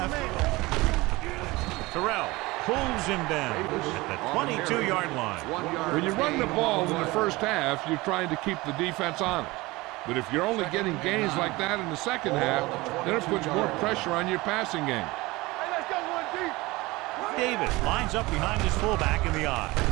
Terrell pulls him down at the 22-yard line. When you run the ball in the first half, you're trying to keep the defense honest. But if you're only getting gains like that in the second half, then it puts more pressure on your passing game. Hey, let's go one deep. Davis lines up behind his fullback in the I.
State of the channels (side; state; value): left; quieter; 21.5 dB